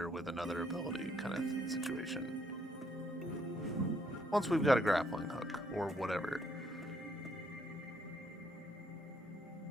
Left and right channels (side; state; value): both; normal; correlation 0.70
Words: with another ability kind of situation. Once we've got a grappling hook or whatever.